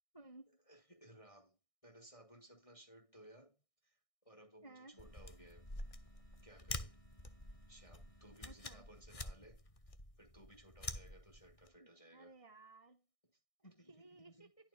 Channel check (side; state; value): right; late; 1.6 ms